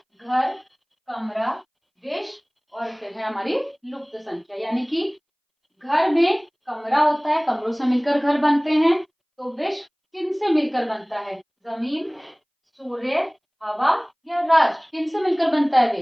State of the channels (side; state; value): both; identical; correlation 1.00